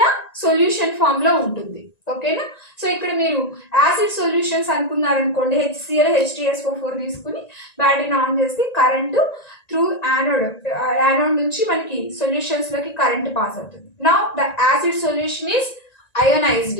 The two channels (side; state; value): right; late; 1.9 ms